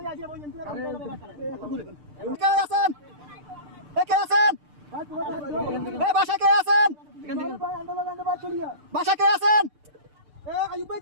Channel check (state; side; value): late; left; 6.7 ms